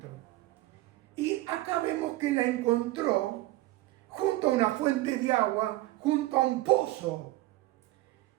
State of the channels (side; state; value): left; quieter; 17.9 dB